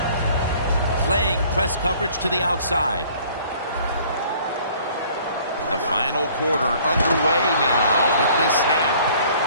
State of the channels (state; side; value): inverted; both; correlation -0.55